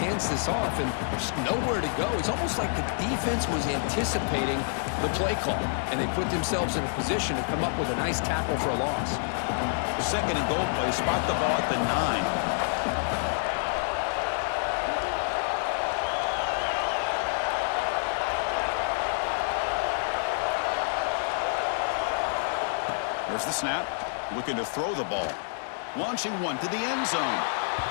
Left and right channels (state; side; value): silent; right; digital silence